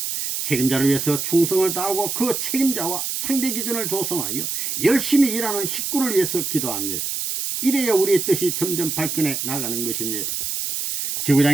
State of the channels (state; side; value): noise; right; hiss, 3 dB below the sound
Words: 책임자를 위해서 충성을 다하고 그 책임자와 상대 기준을 조성하여 열심히 일하는 식구를 위해서 기도합니다. 이래야 우리의 뜻이 점점 발전해 나가는 것입니다.